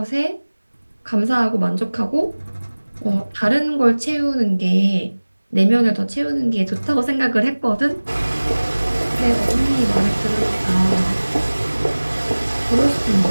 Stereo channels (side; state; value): both; inverted; correlation -1.00